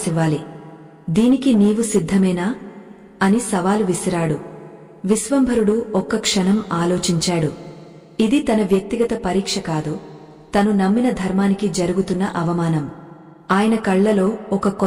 దీనికి నీవు సిద్ధమేనా అని సవాలు విసిరాడు. విశ్వంభరుడు ఒక్క క్షణం ఆలోచించాడు. ఇది తన వ్యక్తిగత పరీక్ష కాదు, తను నమ్మిన ధర్మానికి జరుగుతున్న అవమానం. ఆయన కళ్లలో ఒక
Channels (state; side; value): identical; both; correlation 1.00